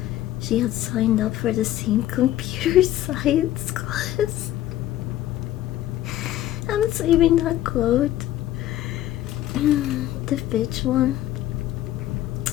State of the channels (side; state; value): right; quieter; 13.6 dB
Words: she had signed up for the same computer science class. I'm saving that quote. The bitch one.